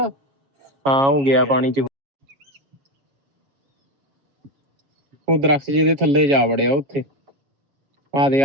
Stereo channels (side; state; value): left; late; 7.3 ms